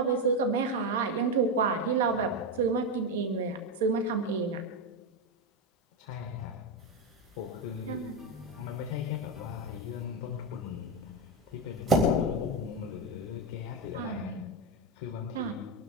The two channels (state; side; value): normal; both; correlation 0.10